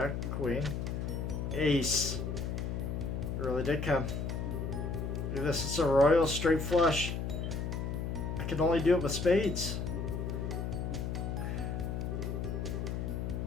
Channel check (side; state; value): left; noise; hum, 2 dB below the sound